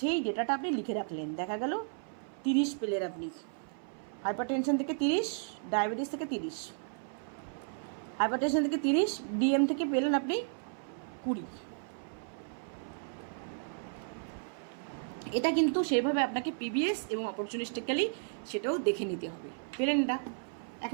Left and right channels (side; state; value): left; silent; 55 dB below the other